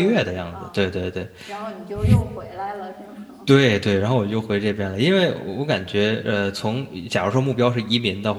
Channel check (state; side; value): identical; both; correlation 1.00